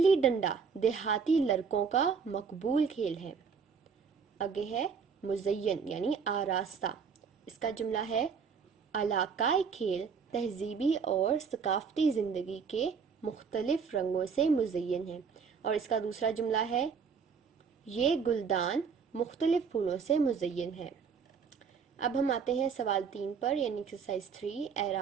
ڈنڈا دیہاتی لڑکوں کا مقبول کھیل ہے۔ آگے ہے مزین یعنی آراستہ، اس کا جملہ ہے علاقائی کھیل تہذیبی اور ثقافتی زندگی کے مختلف رنگوں سے مزین ہے، اور اس کا دوسرا جملہ ہے یہ گلدان مختلف پھولوں سے مزین ہے۔ اب ہم آتے ہیں سوال 3 پر یعنی ایکسرسائز 3،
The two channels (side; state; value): left; quieter; 6.0 dB